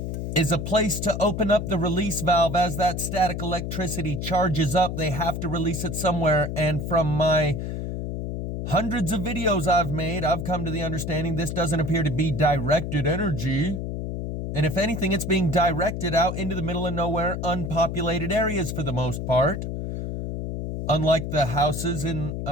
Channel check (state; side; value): noise; left; hum, 4 dB below the sound